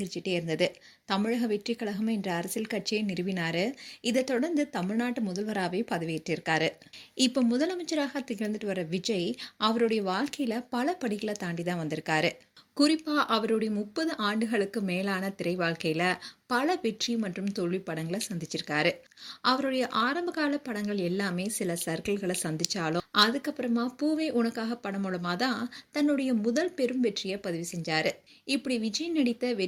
இருந்தது. தமிழக வெற்றி கழகம் என்ற அரசியல் கட்சியை நிறுவினாரு. இதை தொடர்ந்து தமிழ்நாட்டு முதல்வராகவே பதவியேற்றிருக்காரு. இப்போ முதலமைச்சராக திகழ்ந்துட்டு வர விஜய் அவருடைய வாழ்க்கையில பல படிகளை தாண்டி தான் வந்திருக்காரு. குறிப்பா அவருடைய 30 ஆண்டுகளுக்கு மேலான திரை வாழ்க்கையில பல வெற்றி மற்றும் தோல்வி படங்களை சந்திச்சிருக்காரு. அவருடைய ஆரம்ப கால படங்கள் எல்லாமே சில சர்க்கிள்களை சந்திச்சாலும் அதுக்கப்புறமா பூவே உனக்காக படம் மூலமா தான் தன்னுடைய முதல் பெரும் வெற்றியை பதிவு செஞ்சாரு. இப்படி விஜய் நடித்த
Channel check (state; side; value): identical; both; correlation 1.00